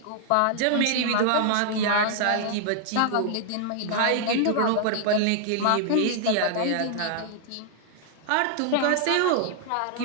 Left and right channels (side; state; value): both; different; correlation -0.01